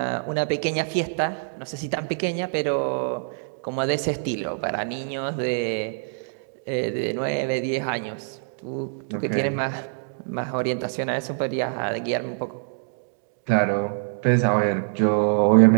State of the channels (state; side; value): silent; left; digital silence